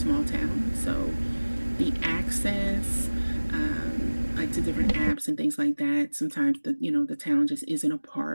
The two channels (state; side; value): inverted; both; correlation -1.00